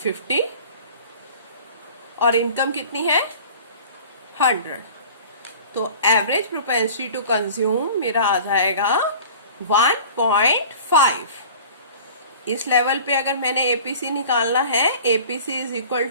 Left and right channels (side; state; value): both; inverted; correlation -0.44